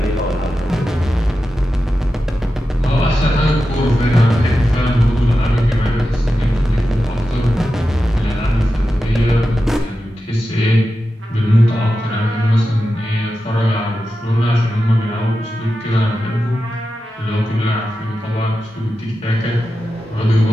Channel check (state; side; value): normal; both; correlation 0.91